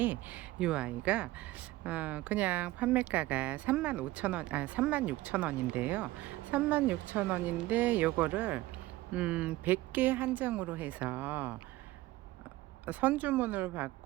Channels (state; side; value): quieter; left; 17.8 dB